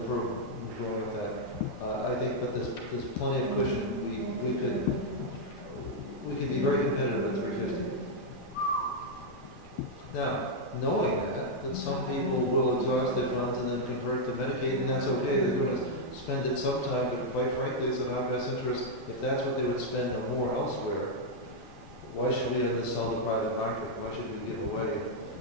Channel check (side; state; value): both; normal; correlation -0.03